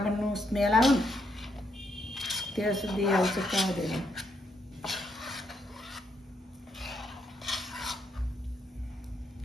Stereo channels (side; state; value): both; normal; correlation 0.76